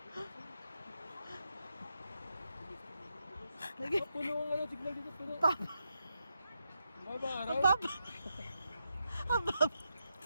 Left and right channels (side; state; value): both; inverted; correlation -0.84